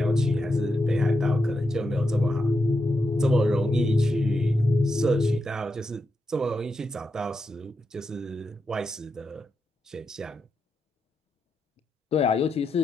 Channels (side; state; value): both; normal; correlation 0.86